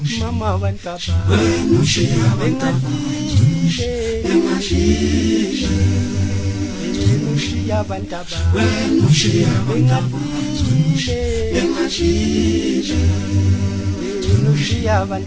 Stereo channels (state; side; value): identical; both; correlation 1.00